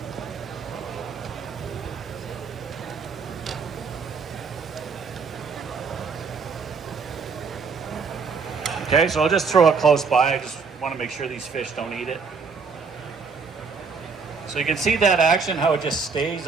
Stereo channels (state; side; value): quieter; left; 5.1 dB